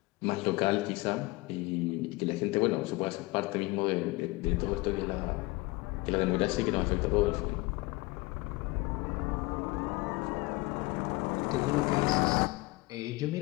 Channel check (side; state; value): right; quieter; 23.0 dB